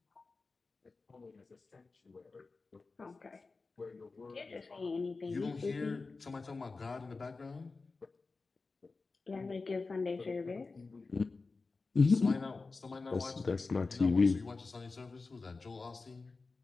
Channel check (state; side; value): quieter; right; 3.9 dB